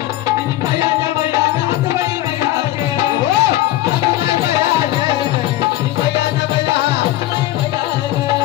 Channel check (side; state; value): right; quieter; 14.9 dB